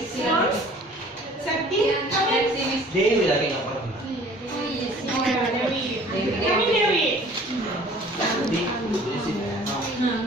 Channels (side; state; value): both; normal; correlation 0.50